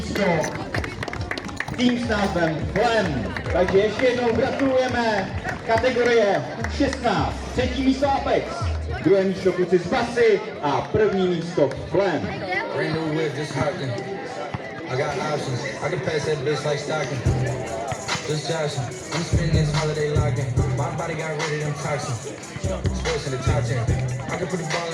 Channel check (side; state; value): both; identical; correlation 1.00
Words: tým s názvem Flem. Takže ještě jednou gratulujeme kategorie U16. Třetí místo Apex, druhé místo kluci z Basy a první místo Flem. Brand new whip, just hopped in. I got options. I can pass that bitch like Stockton. Just joshing. I'm spending this holiday locked in. My body got rid of them toxins. Sports in the top 10. I can put the ball